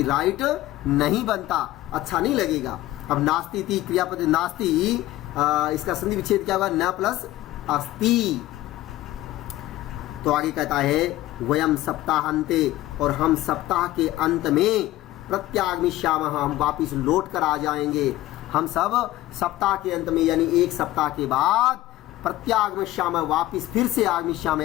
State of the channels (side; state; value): right; quieter; 16.2 dB